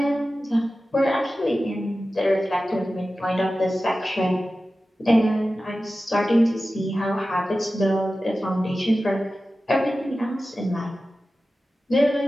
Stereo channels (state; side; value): normal; both; correlation 0.94